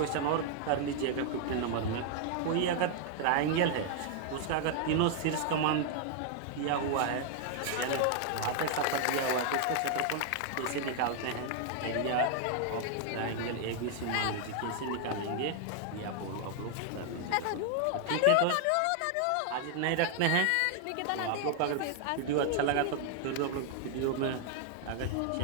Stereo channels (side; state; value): both; different; correlation 0.00